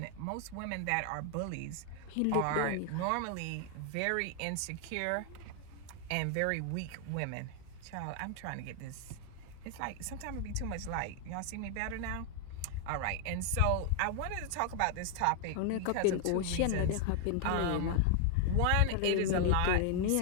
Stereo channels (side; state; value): both; different; correlation 0.00